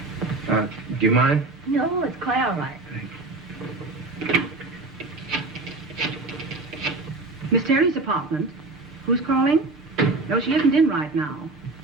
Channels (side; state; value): left; quieter; 3.3 dB